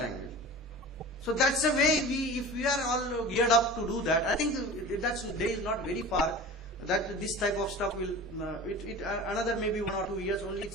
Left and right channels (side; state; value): both; normal; correlation 0.36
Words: So that's the way if we are all geared up to do that, I think that's day is not very far that this type of stuff will, another maybe 1 or 2 years only,